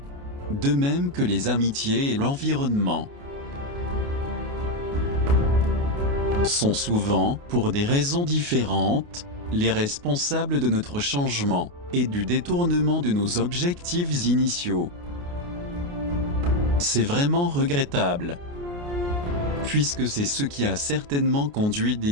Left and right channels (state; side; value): late; left; 28 ms